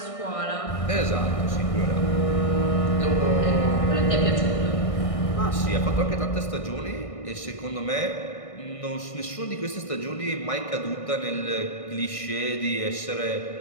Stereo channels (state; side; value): late; right; 1.6 ms